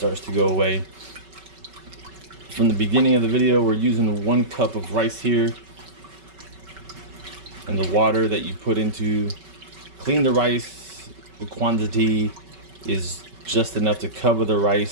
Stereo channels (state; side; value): late; left; 5.2 ms